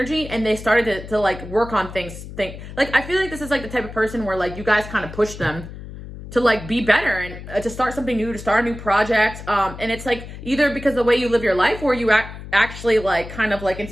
and they started to like work on things. Like, I feel like this is like the type of person where like you guys kind of push them to like be better and to start something new, to start a new project. And it's like either because of the way you live your life, or you actually like kind of like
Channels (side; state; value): left; noise; hum, 12 dB below the sound